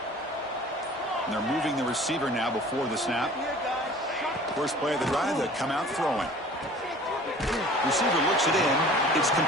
And they're moving the receiver now before the snap. First play of the drive, they come out throwing. Receiver looks it in. It's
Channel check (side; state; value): both; normal; correlation 0.46